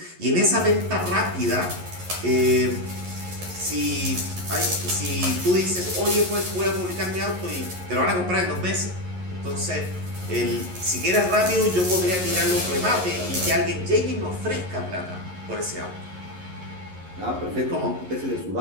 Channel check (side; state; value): left; late; 11 ms